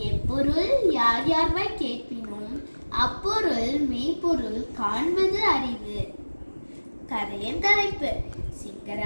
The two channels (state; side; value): inverted; both; correlation -1.00